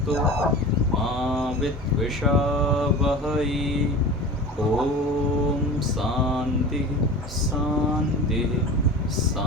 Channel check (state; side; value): normal; both; correlation 0.34